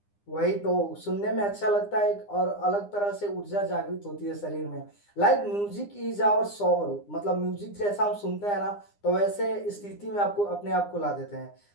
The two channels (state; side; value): late; right; 9.8 ms